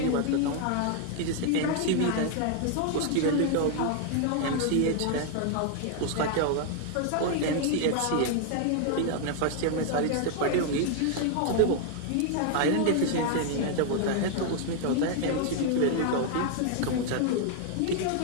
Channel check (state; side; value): different; both; correlation 0.00